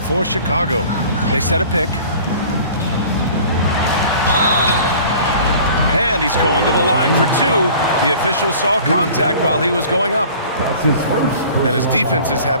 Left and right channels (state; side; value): inverted; both; correlation -0.46